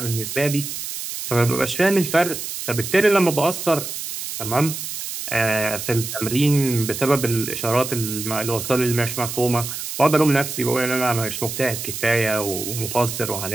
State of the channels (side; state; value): right; noise; hiss, 6 dB below the sound